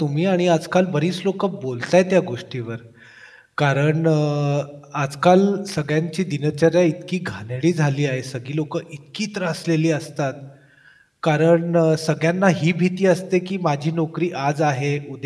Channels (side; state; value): both; identical; correlation 1.00